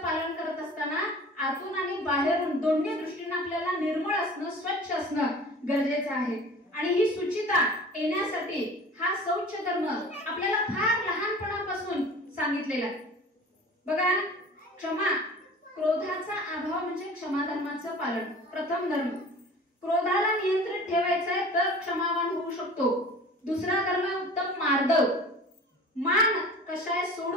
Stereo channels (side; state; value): both; normal; correlation 0.42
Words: करत असताना आतून आणि बाहेरून दोन्ही दृष्टीने आपल्याला निर्मळ असणं, स्वच्छ असणं गरजेचं आहे. आणि ही शुचिता येण्यासाठी हा शौच धर्म आपल्याला फार लहानपणापासून सांगितलेला आहे. बघा, क्षमा, क्रोधाचा अभाव म्हणजे क्षमा धर्माचं पालन. प्रथम धर्म, क्रोधाला नियंत्रित ठेवायचं आहे तर क्षमावान होऊ शकतो. दुसरा धर्म उत्तम मार्दव. मान कशाय